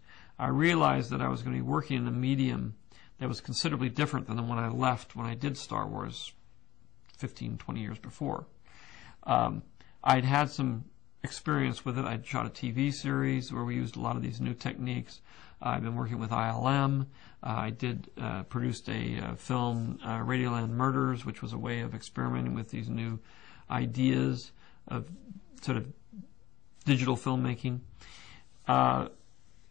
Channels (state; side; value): quieter; right; 15.7 dB